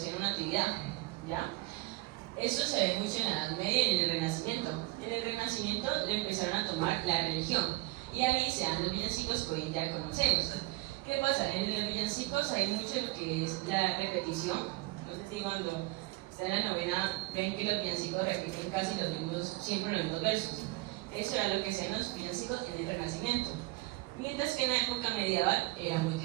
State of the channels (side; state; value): left; quieter; 20.7 dB